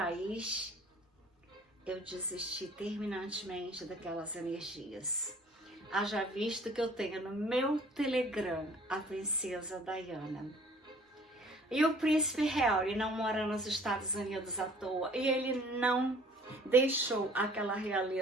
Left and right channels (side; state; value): both; normal; correlation 0.53